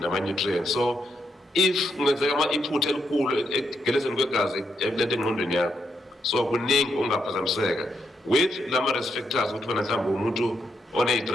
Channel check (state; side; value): normal; both; correlation 0.80